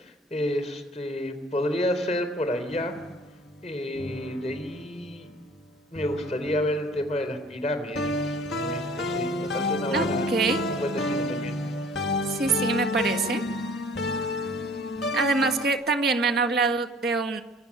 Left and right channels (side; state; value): both; normal; correlation 0.50